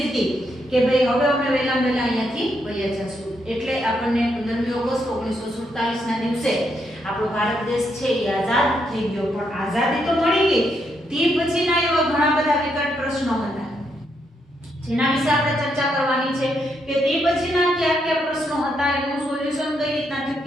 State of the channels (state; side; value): normal; both; correlation 0.78